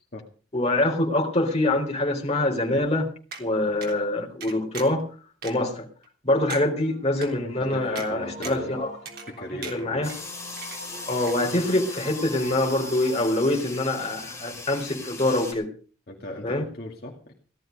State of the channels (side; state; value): both; normal; correlation 0.38